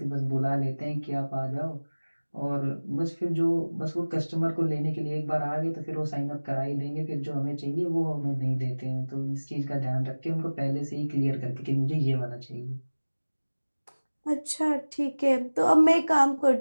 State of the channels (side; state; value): both; inverted; correlation -1.00